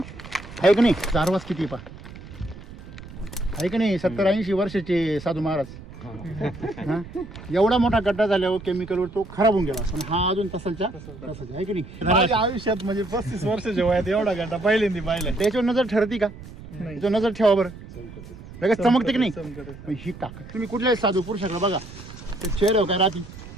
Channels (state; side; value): noise; right; rumble, 15 dB below the sound